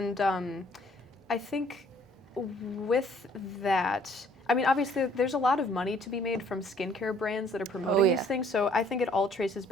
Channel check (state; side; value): normal; both; correlation 0.60